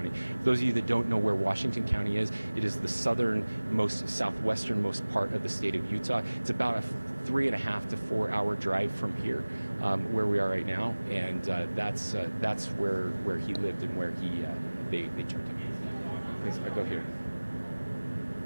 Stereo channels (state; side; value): inverted; both; correlation -1.00